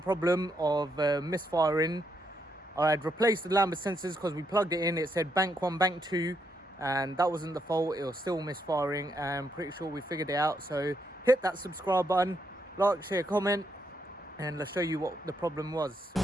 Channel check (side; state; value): both; normal; correlation 0.78